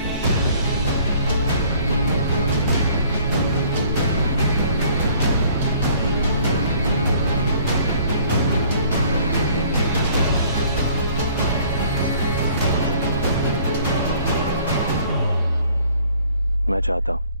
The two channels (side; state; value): both; inverted; correlation -0.57